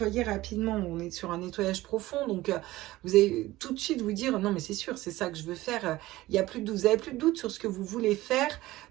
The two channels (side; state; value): left; quieter; 17.5 dB